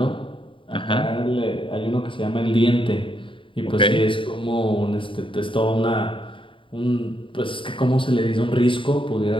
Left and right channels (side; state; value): right; late; 0.25 ms